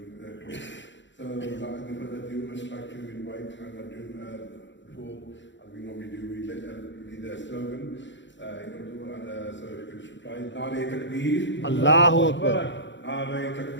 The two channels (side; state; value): right; late; 0.53 ms